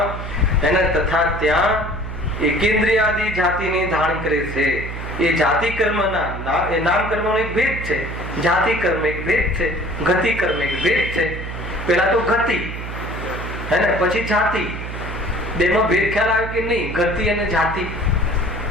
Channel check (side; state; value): right; noise; hum, 7 dB below the sound